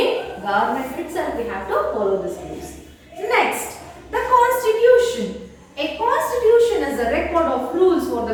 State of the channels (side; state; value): both; identical; correlation 1.00